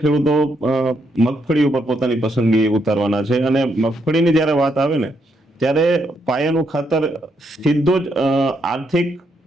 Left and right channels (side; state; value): both; normal; correlation 0.77